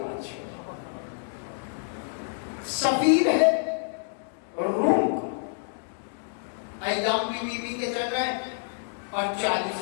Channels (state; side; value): silent; right; digital silence